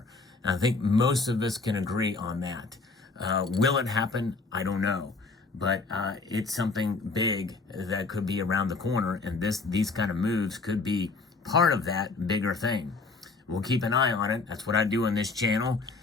And I think most of us can agree on that. Will it happen? I don't know. But it's something big that could be around the corner, and these kind of moves could be part of that bigger thing. We'll keep an eye on it. That's what I do on this channel,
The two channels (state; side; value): quieter; right; 4.0 dB